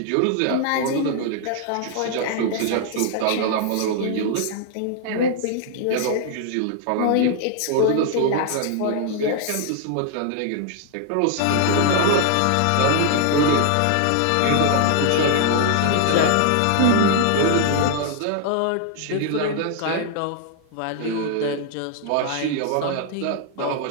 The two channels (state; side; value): different; both; correlation 0.00